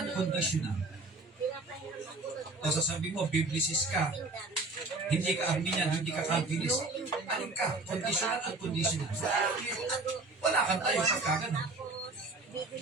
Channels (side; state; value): left; quieter; 3.2 dB